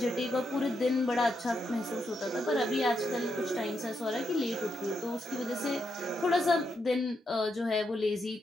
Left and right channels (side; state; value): both; normal; correlation 0.82